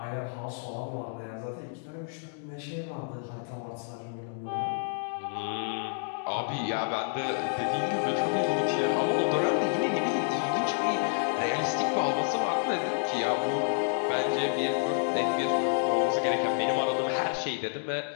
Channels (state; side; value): silent; right; digital silence